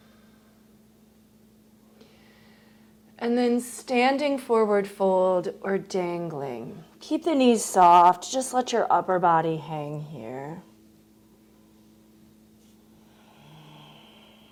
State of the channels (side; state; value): both; identical; correlation 1.00